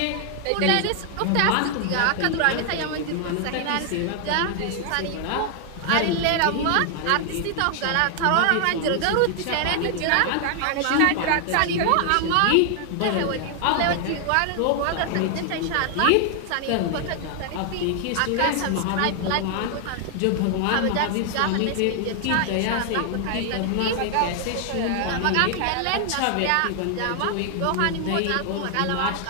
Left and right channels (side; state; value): both; different; correlation 0.00